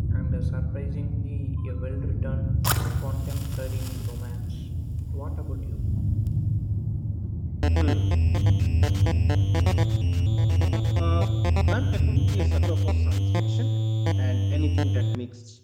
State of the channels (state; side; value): identical; both; correlation 1.00